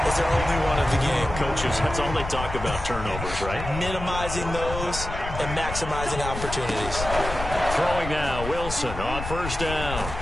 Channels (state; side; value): noise; left; rumble, 7 dB below the sound